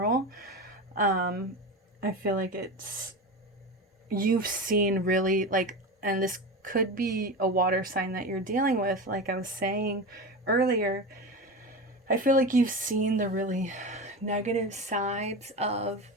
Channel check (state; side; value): normal; both; correlation 0.25